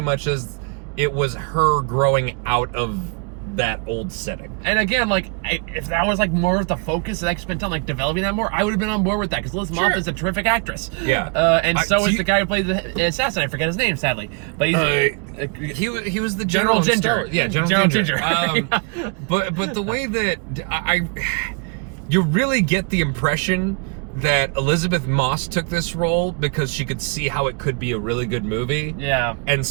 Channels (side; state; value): left; quieter; 35.2 dB